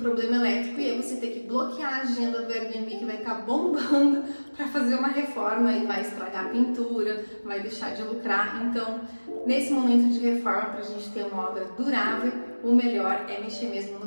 elétrico e aí você ter que bloquear a agenda do Airbnb, que vai estar bombando para fazer uma reforma e vai estragar a pintura, vai deixar de lucrar. Então, nesse momento de reforma, para a gente ter uma obra durável, o melhor é mexer mesmo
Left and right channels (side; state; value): both; inverted; correlation -1.00